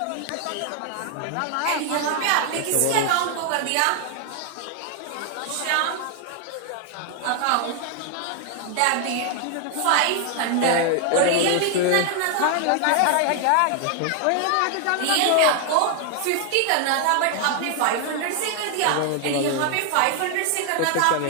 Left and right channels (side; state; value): both; different; correlation 0.00